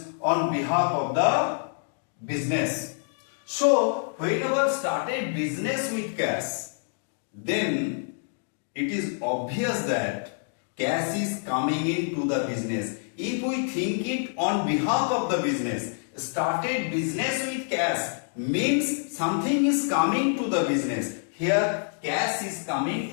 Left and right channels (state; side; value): silent; right; digital silence